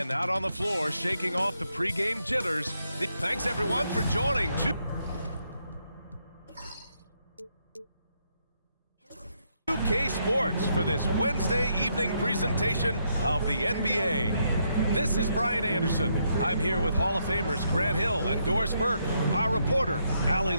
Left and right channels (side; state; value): both; inverted; correlation -0.77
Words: out on the floor, shaking off the pregame jitters. Thanks, everyone, for joining. 2K Sports for this Wednesday evening presentation of the NBA. This is Brian Anderson. I'm here with Hall of Famers Grant Hill and Doris Burke, our reporter, Allie